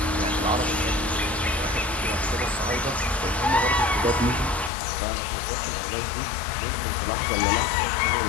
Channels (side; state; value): right; drops out; at 4.7 s